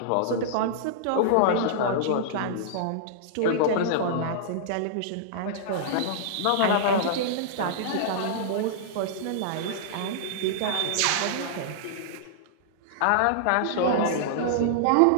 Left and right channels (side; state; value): both; different; correlation -0.02